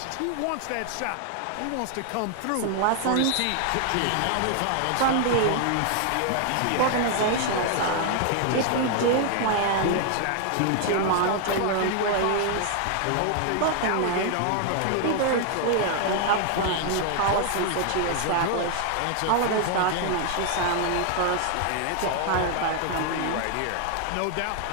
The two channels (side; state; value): both; different; correlation 0.00